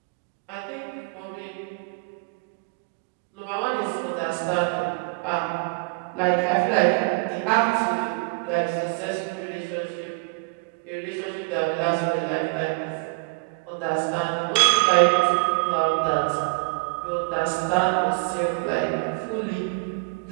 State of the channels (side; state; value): left; quieter; 30.2 dB